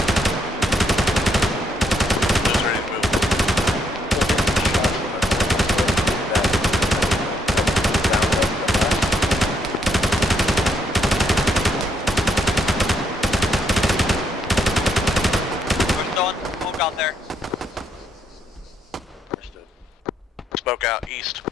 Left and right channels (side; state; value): both; normal; correlation 0.74